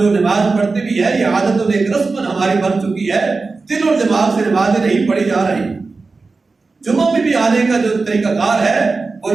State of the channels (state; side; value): quieter; left; 4.0 dB